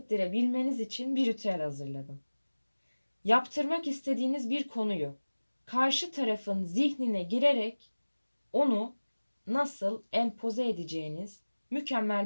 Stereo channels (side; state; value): both; inverted; correlation -1.00